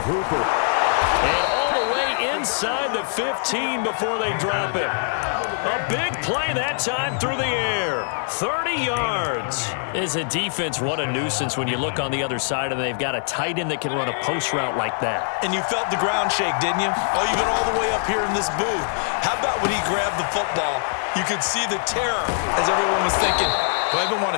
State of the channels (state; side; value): silent; right; digital silence